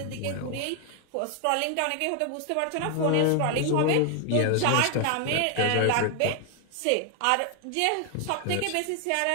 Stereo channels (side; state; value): both; different; correlation 0.00